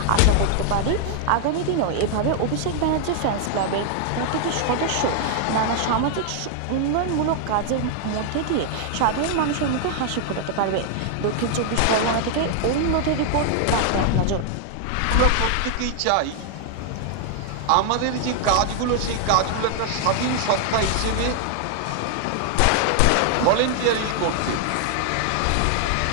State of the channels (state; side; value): different; both; correlation 0.00